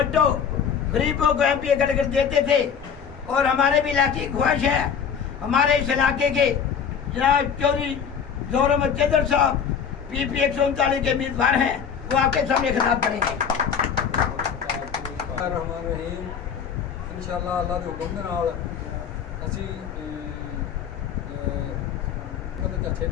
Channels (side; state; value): right; quieter; 7.3 dB